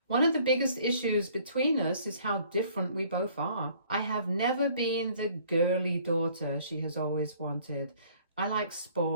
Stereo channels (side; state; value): both; inverted; correlation -0.57